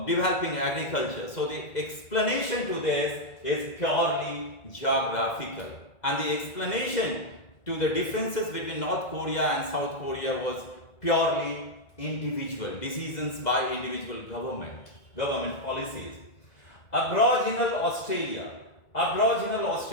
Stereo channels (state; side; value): late; right; 1.9 ms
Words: developing agriculture. So the explanation to this is purely geographical. And the explanation to the differences between North Korea and South Korea was purely individual, decisions by individual government policies. Aboriginal Australia.